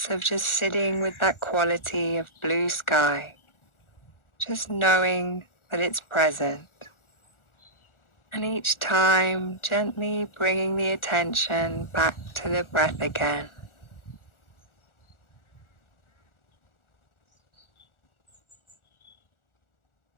of just sitting with that quality of blue sky, just knowing that it's present. And each time, gently bringing the attention back to the breath again.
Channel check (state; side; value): late; right; 1.4 ms